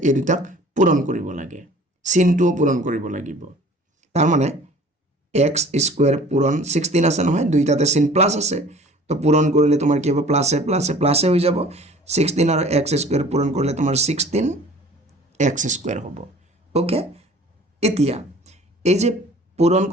এই দুটাক পূৰণ কৰিব লাগে চিনটো পূৰণ কৰিব লাগিব তাৰ মানে x স্কয়াৰ পূৰণ 16 আছে নহয় দুইটাতে চিন প্লাস আছে তো পূৰণ কৰিলে তোমাৰ কি হ'ব প্লাসে প্লাসে প্লাসে হৈ যাব 16 আৰু x স্কয়াৰ পূৰণ কৰিলে তোমাৰ 16 x স্কয়াৰ হ'ব ওকে এতিয়া এই যে পূৰণ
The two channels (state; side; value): normal; both; correlation 0.48